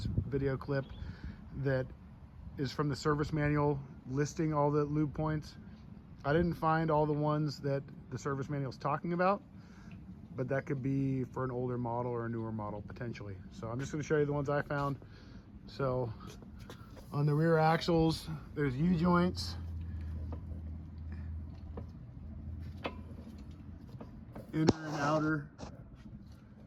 video clip that is from the service manual listing all the lube points. I didn't find all the ones that the service manual is talking about, but that could be for an older model or a newer model potentially. So I'm just going to show you the ones I found. So on the rear axles, there's U-joints. Inner and outer,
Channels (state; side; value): identical; both; correlation 1.00